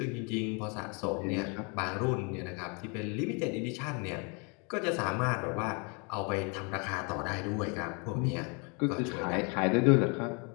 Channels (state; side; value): quieter; right; 33.7 dB